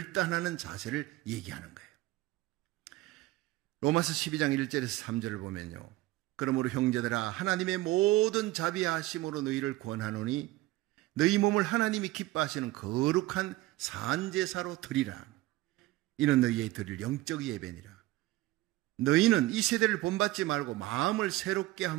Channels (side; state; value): left; quieter; 18.0 dB